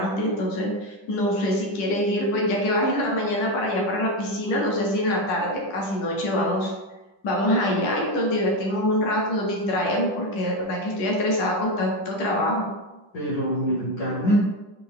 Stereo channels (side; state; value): right; late; 10 ms